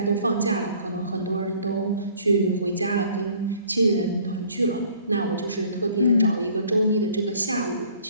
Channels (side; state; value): both; inverted; correlation -0.55